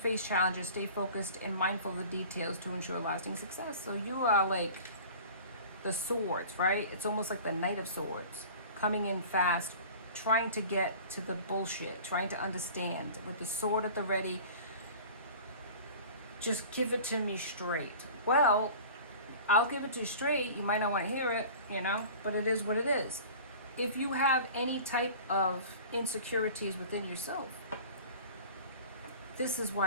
challenges, stay focused and mindful of the details to ensure lasting success. So you are like the swords, right? It's almost like the Knight of Swords, coming in fast, trying to get to the bullshit, trying to understand with the sword at the ready. Just give it to me straight. Well, I'll give it to you straight. You might not want to hear it, you know, but it is what it is. If you have any type of insecurities within yourself, this is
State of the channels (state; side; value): inverted; both; correlation -0.41